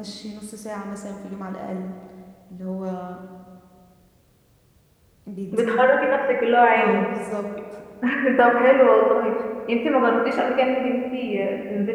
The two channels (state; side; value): identical; both; correlation 1.00